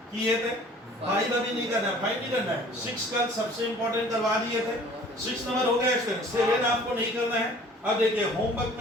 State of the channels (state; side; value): normal; both; correlation 0.50